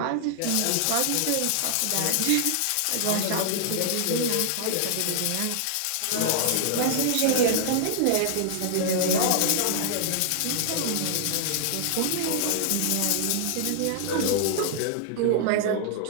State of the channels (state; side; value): different; both; correlation -0.01